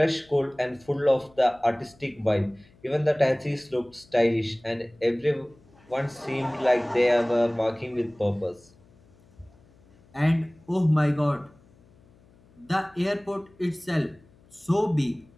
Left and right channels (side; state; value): left; noise; hum, 29 dB below the sound